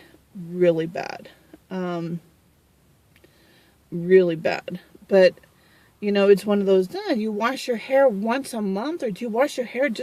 Really bad. Really bad. But, you know, it's one of those, you wash your hair once a month, or do you wash your hair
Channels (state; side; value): identical; both; correlation 1.00